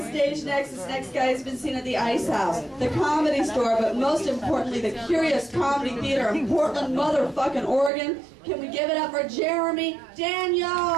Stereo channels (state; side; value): drops out; left; at 7.9 s